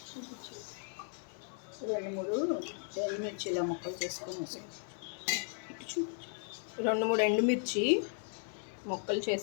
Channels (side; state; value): right; silent; 54 dB below the other